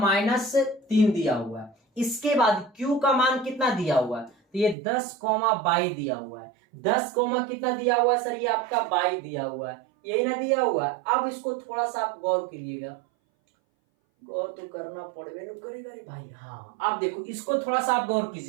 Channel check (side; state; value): left; drops out; at 4.8 s